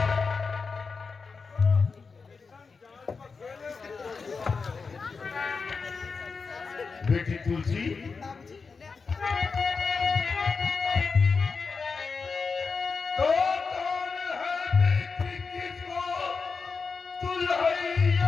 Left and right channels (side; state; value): right; quieter; 4.8 dB